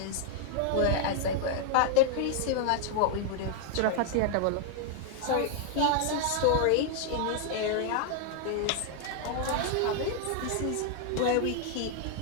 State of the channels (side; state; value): both; different; correlation 0.00